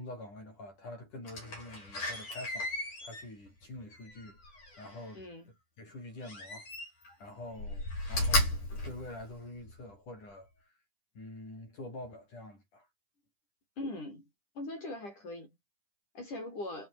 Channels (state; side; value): late; right; 10 ms